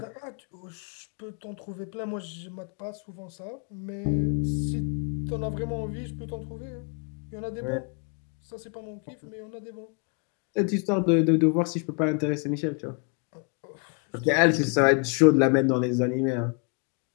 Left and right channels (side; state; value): right; quieter; 39.0 dB